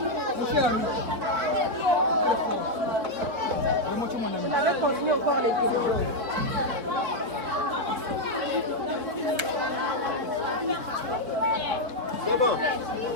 Mon cher ami. Vraiment, tu es mon ami. On avait continué encore les vidéos. C'est bon.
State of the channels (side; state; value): left; late; 4.3 ms